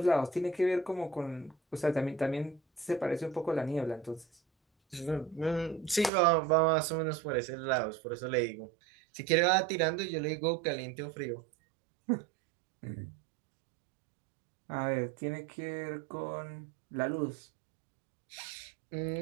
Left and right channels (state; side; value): drops out; left; at 6.1 s